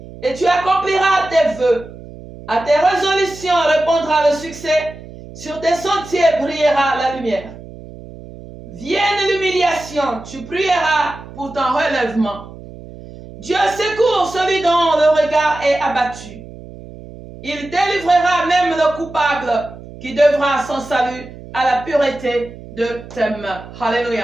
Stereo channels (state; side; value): noise; right; hum, 16 dB below the sound